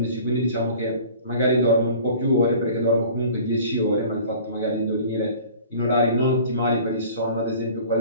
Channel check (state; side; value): inverted; both; correlation -0.46